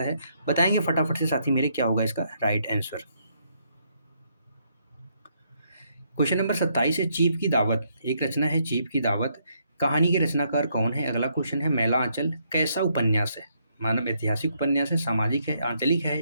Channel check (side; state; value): both; inverted; correlation -0.74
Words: है, बताएंगे फटाफट से साथी मेरे क्या होगा इसका राइट आंसर। क्वेश्चन नंबर 27 है, चीफ की दावत, एक रचना है चीफ की दावत, कहानी के रचनाकार कौन है। अगला क्वेश्चन है, मैला आंचल कैसा उपन्यास है, मानव ऐतिहासिक उपन्यास है, सामाजिक है, आंचलिक है